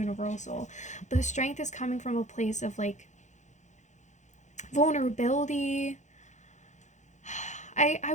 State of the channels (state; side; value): late; right; 0.35 ms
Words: But the strength is coming from a place of like vulnerability. I